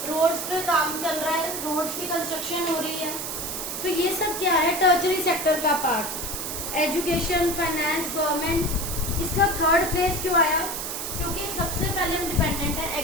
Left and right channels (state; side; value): noise; right; hiss, 5 dB below the sound